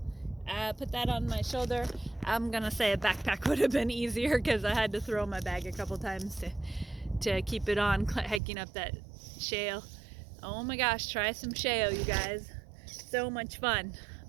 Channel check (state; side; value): drops out; left; at 8.4 s